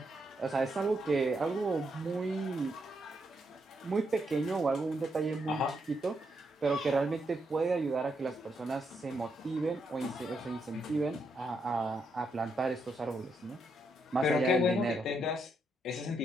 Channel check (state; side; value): normal; both; correlation 0.79